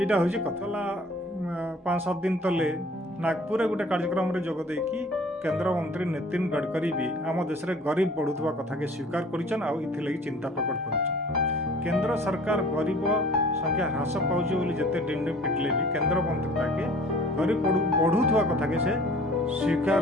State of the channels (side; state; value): both; normal; correlation 0.50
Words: हूँ कथा 5-7 दिन तले नागपुर गोटे कार्यक्रम रे जोग देकी केंद्र मंत्री नितिन गडकरी भी आम देश में गरीब बढ़ुवा कथा के स्वीकार करिछन आ इथिलगी चिंता प्रकट करिछन। केंद्र सरकार गरीब संख्या ह्रास पाउछ बोली जते डिंडे पिटले भी केंद्र मंत्री ताके गरीब बढ़ुवा कथा के से स्वीकार